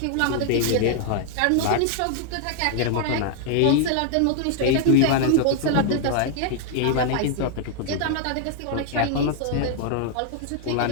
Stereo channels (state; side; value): different; both; correlation 0.00